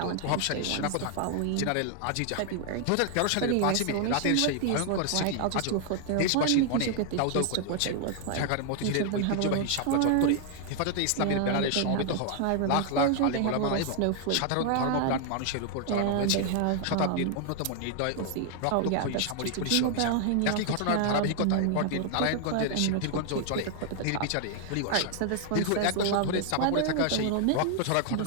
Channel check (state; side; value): different; both; correlation 0.00